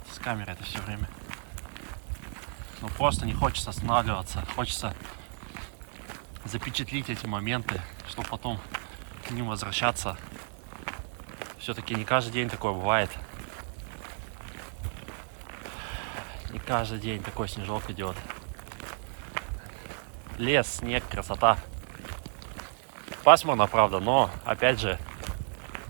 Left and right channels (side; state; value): left; silent; 57 dB below the other